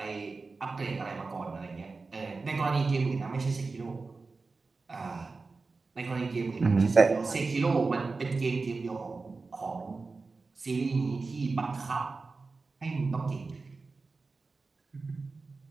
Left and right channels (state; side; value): quieter; left; 4.0 dB